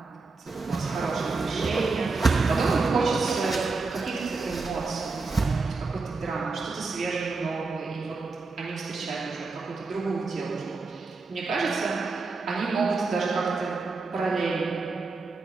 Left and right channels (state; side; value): quieter; left; 4.0 dB